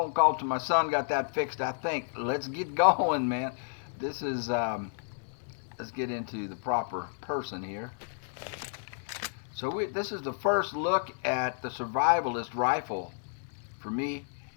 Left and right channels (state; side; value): silent; right; digital silence